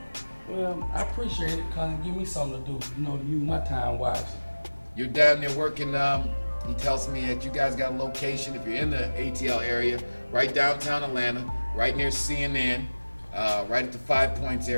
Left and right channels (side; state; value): both; inverted; correlation -1.00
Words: Well, I appreciate it because it give me something to do, to use my time wisely. You're down there working, he tells me that you guys got a location, if you're in the ATL area, right downtown Atlanta, right near CNN, right at the 5 Points